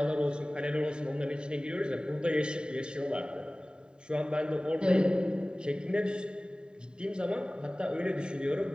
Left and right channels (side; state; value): left; late; 0.048 ms